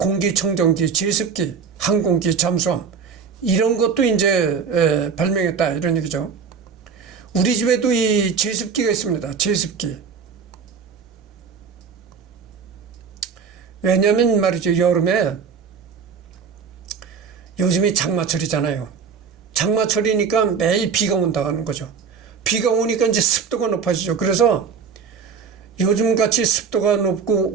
제습기, 항공기, 잠수함 이런 것도 이제 발명했다 이런 얘기죠. 우리 집에도 이 제습기가 있습니다. 제습기. 왜냐하면 말이죠. 여름에 요즘이 장마철이잖아요. 장마철이니까 매일 비가 온다는 거죠. 비가 오니까 이제 습도가 높아지죠. 그래서 요즘같이 습도가 높고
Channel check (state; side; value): quieter; left; 6.0 dB